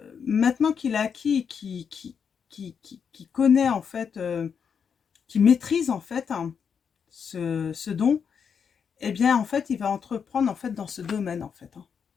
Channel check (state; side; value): quieter; right; 6.8 dB